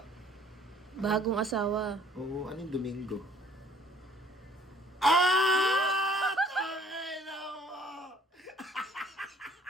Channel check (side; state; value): both; normal; correlation 0.57